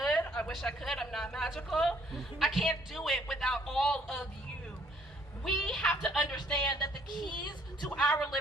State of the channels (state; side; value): normal; both; correlation 0.64